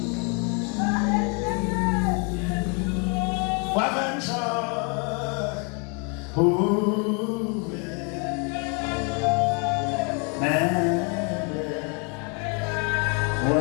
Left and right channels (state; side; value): quieter; right; 35.8 dB